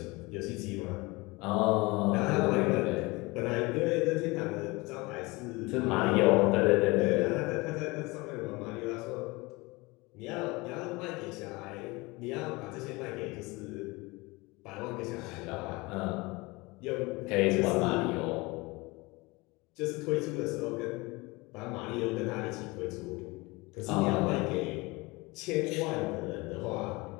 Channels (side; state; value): right; quieter; 24.0 dB